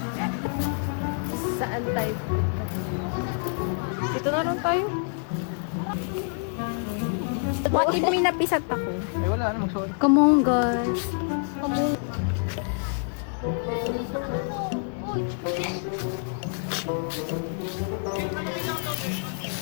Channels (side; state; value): right; silent; 60 dB below the other